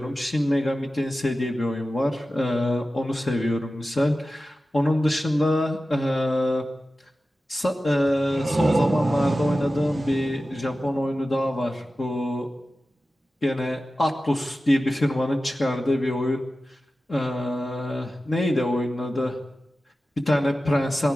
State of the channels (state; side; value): normal; both; correlation 0.94